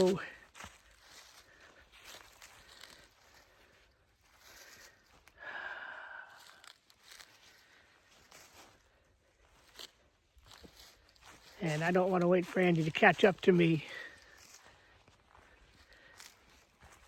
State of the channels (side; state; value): both; identical; correlation 1.00